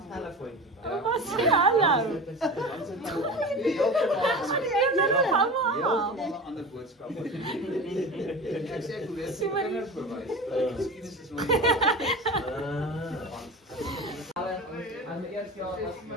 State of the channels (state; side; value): normal; both; correlation 0.32